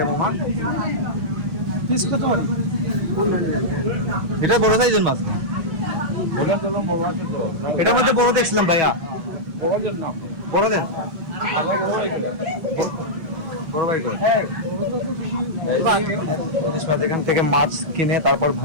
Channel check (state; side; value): late; left; 6.2 ms